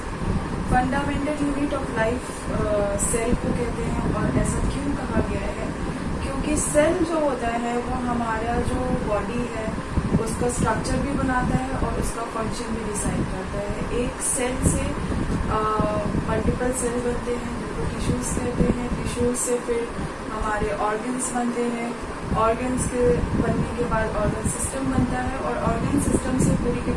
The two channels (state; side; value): identical; both; correlation 1.00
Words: Fundamental unit of life cell को कहते हैं और ऐसा क्यों कहा गया है क्योंकि सेल जो होता है वो हमारा जो बॉडी है उसका स्ट्रक्चर भी बनाता है और उसका फंक्शन भी डिसाइड करता है। एक सेल से मल्टीपल सेल बनते हैं जिनको टिश्यूज कहते हैं। टिश्यूज से फिर हमारे ऑर्गन्स बनते हैं। ऑर्गन्स के बनने के बाद ऑर्गन सिस्टम बनता है और ऑर्गन सिस्टम से पूरी की